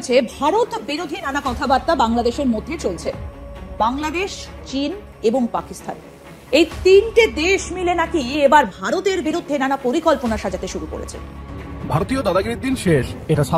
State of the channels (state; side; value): identical; both; correlation 1.00